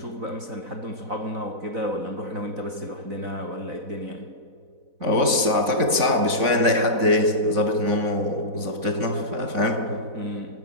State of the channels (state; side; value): late; left; 4.0 ms